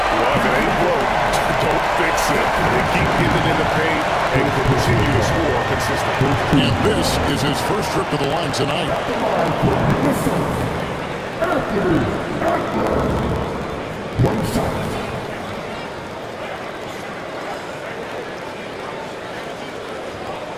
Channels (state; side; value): identical; both; correlation 1.00